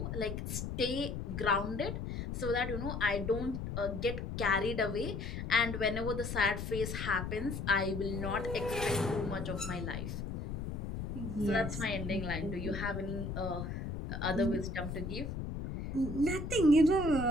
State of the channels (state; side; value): noise; left; rumble, 5 dB below the sound